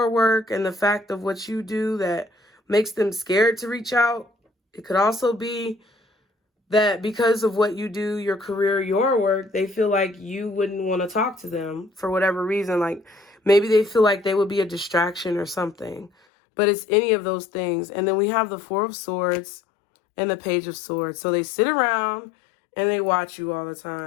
work and the fact of what you do that makes them scared to reach out. It could also be that because of what you do, your career, your work, they feel like you wouldn't want to talk to them for whatever reason. Like maybe they feel like they would be a distraction or something. But it's any of those things. And then we have the Four of Swords and the Page of Swords. So they sit around and they watch you all the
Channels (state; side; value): drops out; right; at 16.1 s